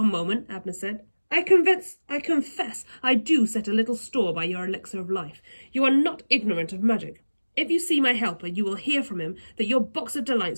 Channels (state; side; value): inverted; both; correlation -1.00